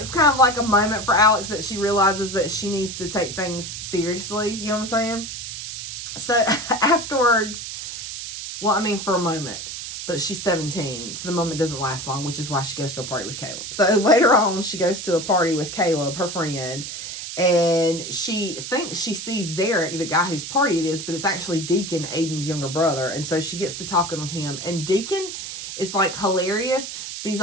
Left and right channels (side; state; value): right; noise; hiss, 8 dB below the sound